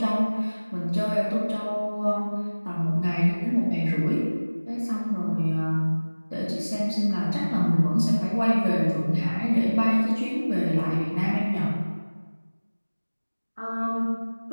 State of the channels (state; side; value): inverted; both; correlation -1.00